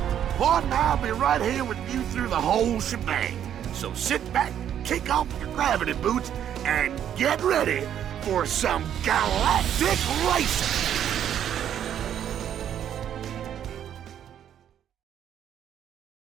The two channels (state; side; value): quieter; left; 9.9 dB